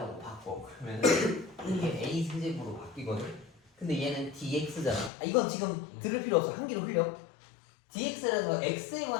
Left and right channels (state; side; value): drops out; right; at 5.1 s